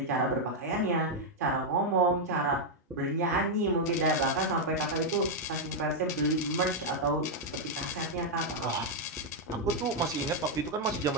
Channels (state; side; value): normal; both; correlation -0.01